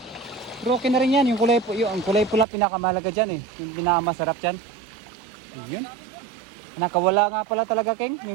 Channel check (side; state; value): left; drops out; at 2.5 s